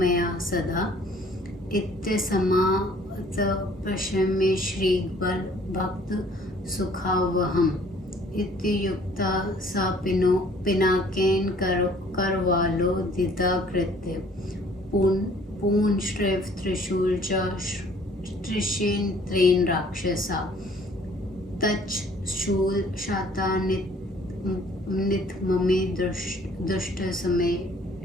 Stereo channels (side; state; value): both; normal; correlation 0.57